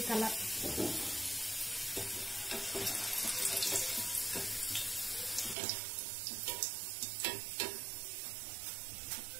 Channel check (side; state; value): left; drops out; at 5.6 s